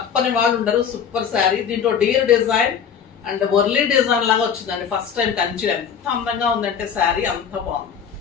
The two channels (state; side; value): quieter; right; 7.5 dB